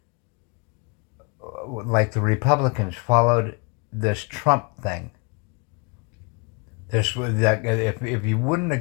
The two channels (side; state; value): right; quieter; 31.7 dB